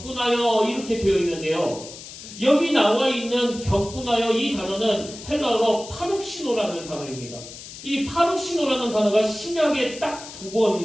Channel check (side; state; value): left; noise; hiss, 14 dB below the sound